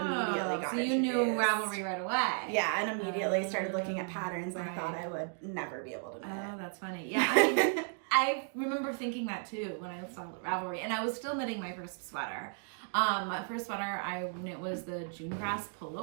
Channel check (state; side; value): silent; left; 55 dB below the other